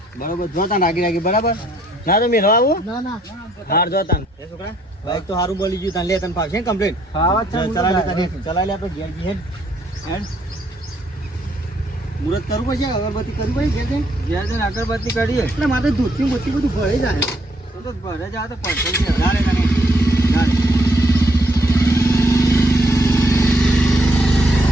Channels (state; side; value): normal; both; correlation 0.69